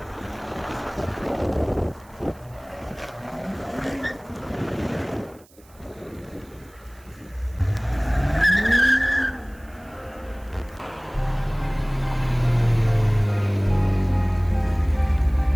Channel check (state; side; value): noise; right; hiss, 28 dB below the sound